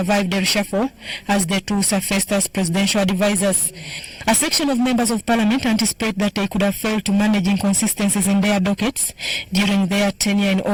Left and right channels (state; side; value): identical; both; correlation 1.00